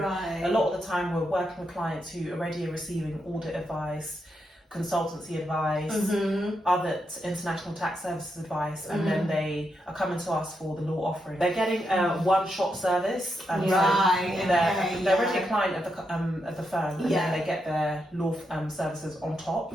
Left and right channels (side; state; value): both; normal; correlation 0.83